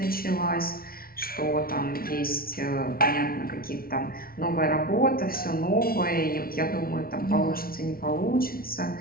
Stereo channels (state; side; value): late; right; 0.43 ms